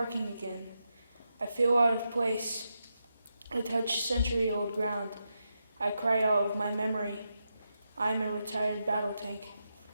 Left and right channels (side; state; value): both; inverted; correlation -0.86